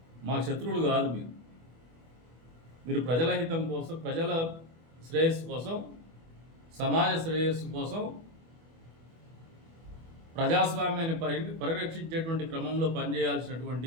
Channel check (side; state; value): left; late; 24 ms